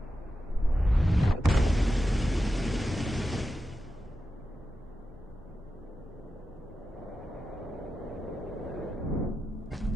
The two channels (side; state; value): both; normal; correlation 0.90